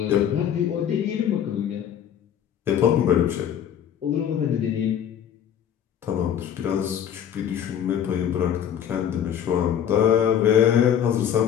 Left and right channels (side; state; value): right; quieter; 9.3 dB